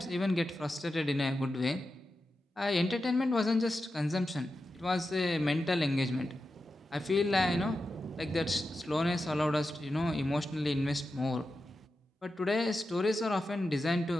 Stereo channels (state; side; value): normal; both; correlation 0.90